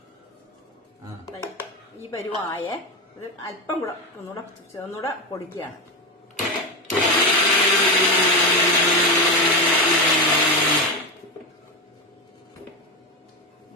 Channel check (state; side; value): normal; both; correlation 0.16